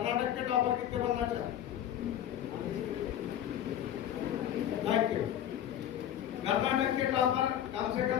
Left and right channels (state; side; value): quieter; right; 10.9 dB